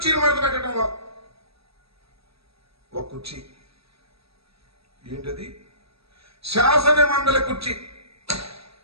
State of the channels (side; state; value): left; late; 0.77 ms